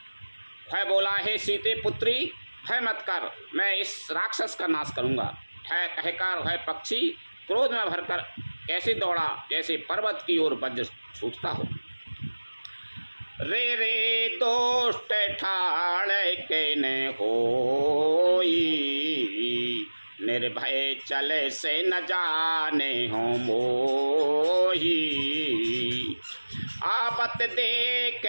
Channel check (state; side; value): inverted; both; correlation -1.00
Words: है बोला, हे सीते पुत्री भय मत कर, मैं इस राक्षस का नाश करूँगा। है कहकर वह पक्षी क्रोध में भरकर कैसे दौड़ा जैसे पर्वत की ओर वज्र छूटता हो। रे रे दोष्ट ठाड़ के न होई, निर्भय चले से न जाने हो मोही। आपत देख